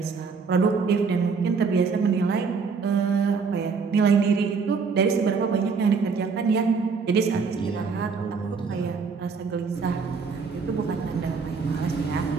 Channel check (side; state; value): left; quieter; 5.2 dB